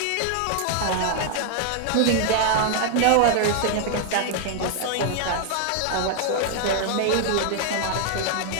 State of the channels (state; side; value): different; both; correlation 0.00